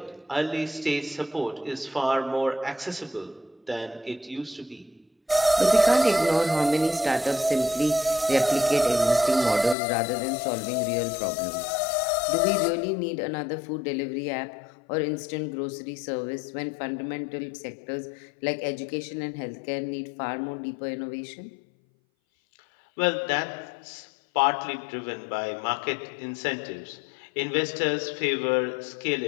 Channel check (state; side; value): drops out; right; at 9.8 s